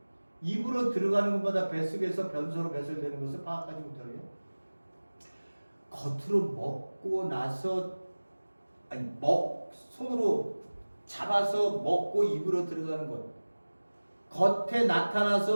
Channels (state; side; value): inverted; both; correlation -1.00